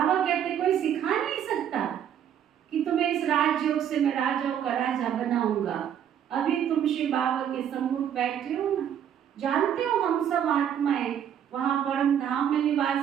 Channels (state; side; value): quieter; left; 9.4 dB